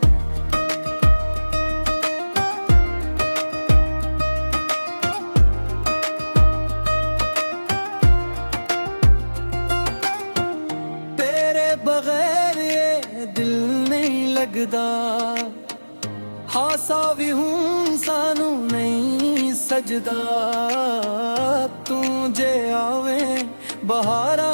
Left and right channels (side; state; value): both; inverted; correlation -1.00